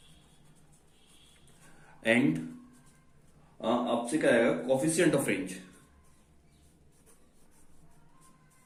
एंड आपसे क्या आएगा, coefficient of range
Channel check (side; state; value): both; identical; correlation 1.00